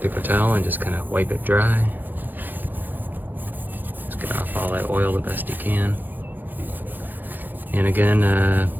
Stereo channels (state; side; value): late; left; 0.088 ms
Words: towel and just kind of wipe it dry. Just get off all that oil the best you can. And again,